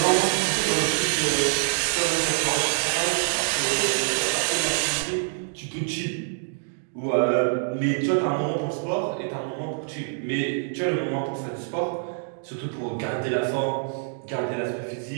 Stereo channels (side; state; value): left; silent; digital silence